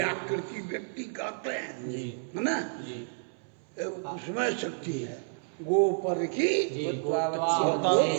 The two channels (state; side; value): silent; left; 58 dB below the other